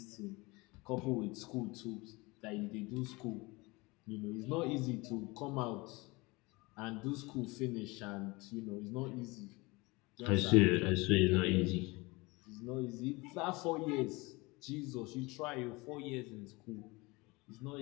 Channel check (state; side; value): quieter; right; 24.2 dB